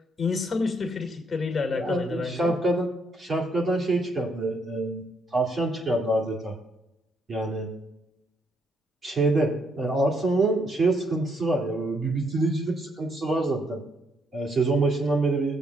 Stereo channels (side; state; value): both; normal; correlation 0.73